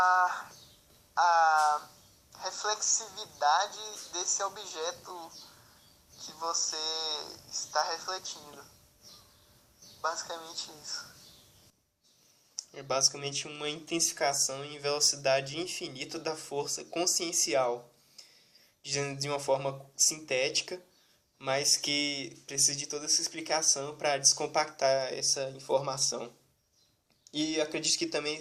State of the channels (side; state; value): both; identical; correlation 1.00